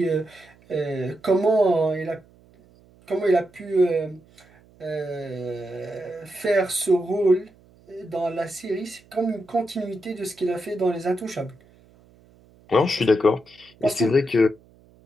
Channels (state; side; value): noise; right; hum, 28 dB below the sound